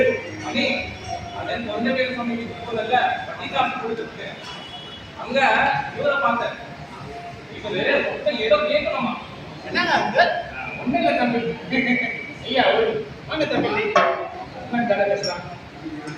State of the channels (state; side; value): identical; both; correlation 1.00